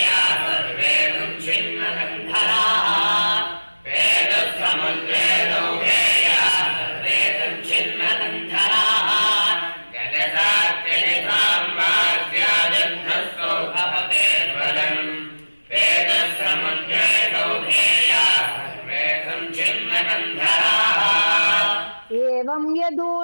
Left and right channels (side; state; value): both; inverted; correlation -1.00